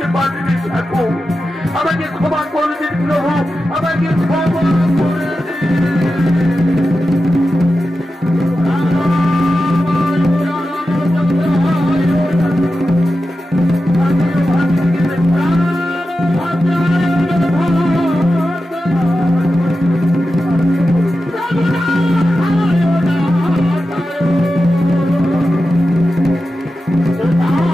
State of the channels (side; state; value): both; normal; correlation 0.92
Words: পারিনি ঠাকুর, আমাকে ক্ষমা করে দিন প্রভু, আমাকে ক্ষমা করে